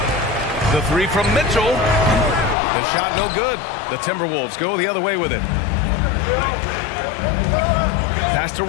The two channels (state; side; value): drops out; right; at 2.6 s